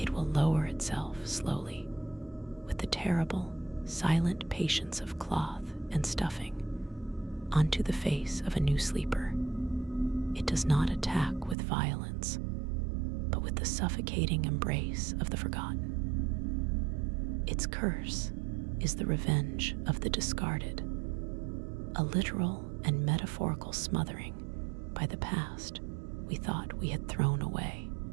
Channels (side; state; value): left; drops out; at 11.6 s